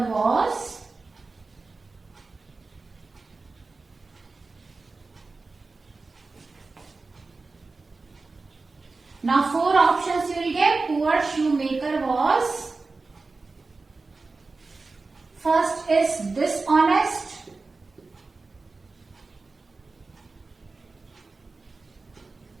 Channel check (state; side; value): quieter; left; 3.8 dB